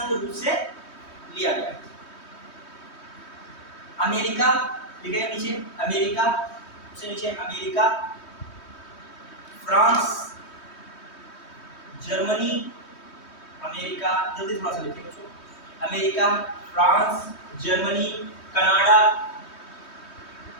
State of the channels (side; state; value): right; late; 3.2 ms